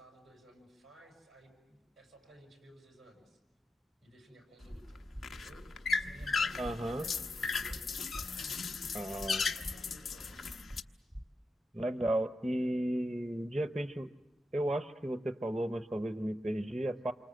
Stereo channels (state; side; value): normal; both; correlation 0.87